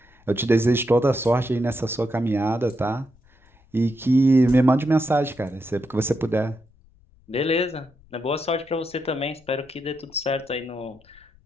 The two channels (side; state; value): left; noise; rumble, 30 dB below the sound